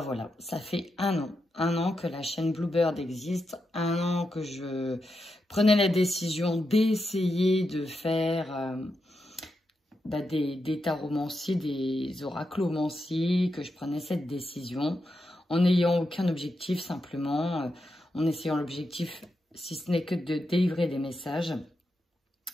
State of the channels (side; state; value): both; normal; correlation 0.86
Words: ça fait un an que la chaîne Bluebird existe, un an que je prenais la décision d'essayer de faire des taromancies, des oraclomancies, que je prenais cette décision. En n'ayant aucun objectif, simplement, en essayant l'objectif, si ce n'est que de délivrer des messages,